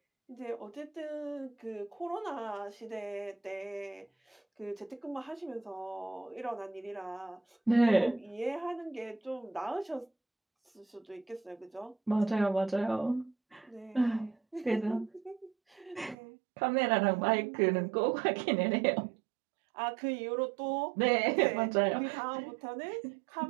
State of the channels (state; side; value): drops out; left; at 16.2 s